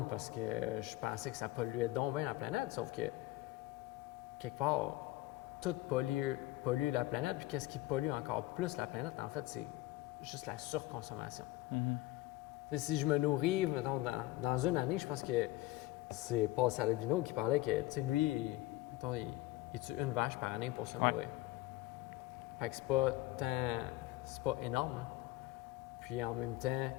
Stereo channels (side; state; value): right; quieter; 17.7 dB